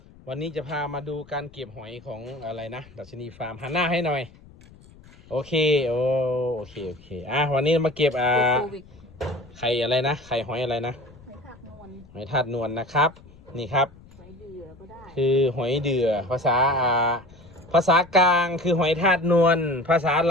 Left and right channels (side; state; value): left; noise; rumble, 23 dB below the sound